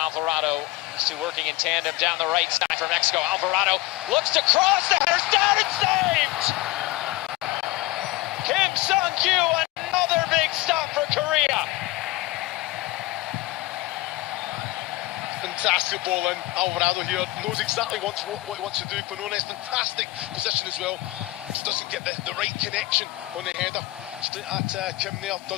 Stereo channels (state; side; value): quieter; right; 19.2 dB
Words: used to working in tandem down the right side for Mexico. Alvarado looks to cross, the header's down and saved! Kim Sung-kyu, another big stop for Korea. Fantastic ball in. Alvarado here knows exactly what he wants to do. Quinones, fantastic position as well. Just doesn't get the right connection on the header. Straight at Kim there,